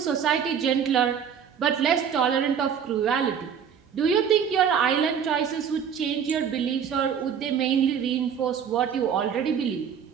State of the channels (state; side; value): quieter; left; 7.7 dB